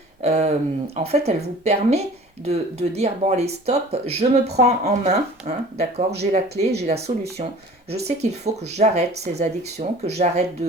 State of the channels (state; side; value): normal; both; correlation 0.45